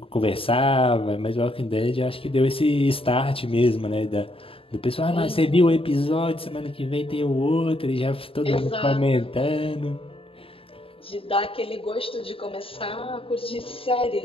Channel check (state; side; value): late; right; 0.27 ms